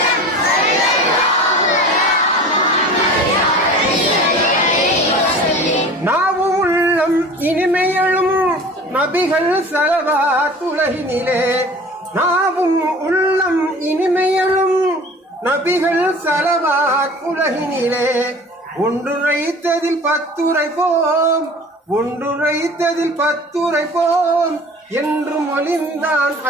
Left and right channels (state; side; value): normal; both; correlation 0.41